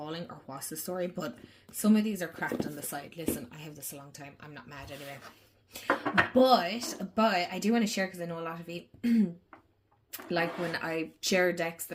or what's the story, but some of these are cracked on the side. Listen, I have this a long time. I'm not mad anyway. But I do want to share, because I know a lot of you like when I share decks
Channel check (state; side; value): identical; both; correlation 1.00